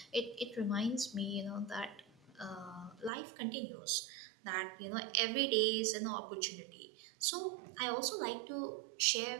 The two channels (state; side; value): drops out; left; at 3.1 s